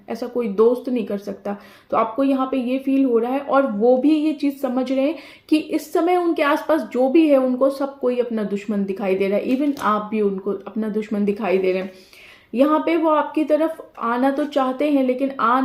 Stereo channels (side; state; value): both; identical; correlation 1.00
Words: ऐसा कोई दोस्त नहीं कर सकता। तो आपको यहाँ पे ये फील हो रहा है, और वो भी ये चीज़ समझ रहे हैं कि इस समय उनके आसपास जो भी है उनको सब कोई अपना दुश्मन दिखाई दे रहा है। इवन आप भी उनको अपना दुश्मन दिखाई दे रहे हैं। यहाँ पे वो आपकी तरफ आना तो चाहते हैं लेकिन आ